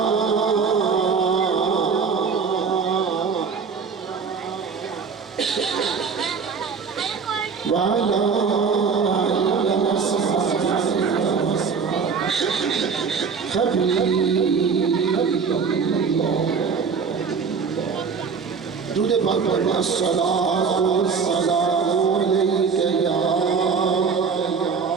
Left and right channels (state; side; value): quieter; left; 5.7 dB